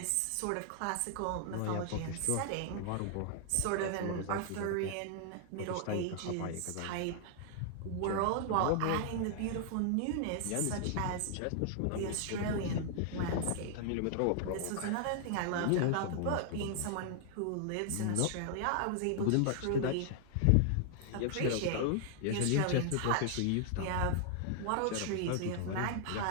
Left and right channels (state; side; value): different; both; correlation 0.00